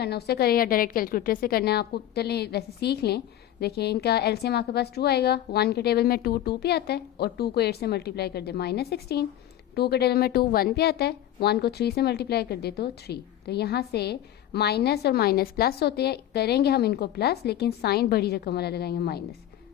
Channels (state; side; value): quieter; right; 12.2 dB